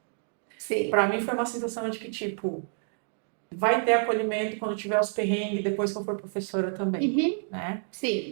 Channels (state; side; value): silent; left; 59 dB below the other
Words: Sim. Pra mim foi uma sensação de que, tipo, vai ter acolhimento quando tiver os perrengues, depois que eu for professora também, Uhum. né?